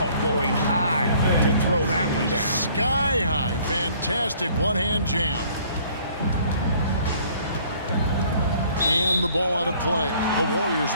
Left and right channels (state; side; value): inverted; both; correlation -0.57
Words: Oh, going high to throw that one down. Sky high. Fantastic one-hand jam. And the ball out of play. The Warriors